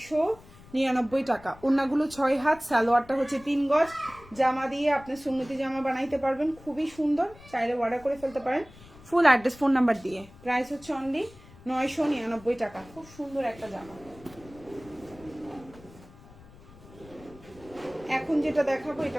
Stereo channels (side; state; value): left; noise; rumble, 22 dB below the sound